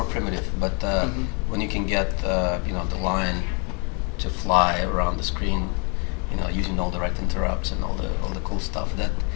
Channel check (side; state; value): right; quieter; 35.3 dB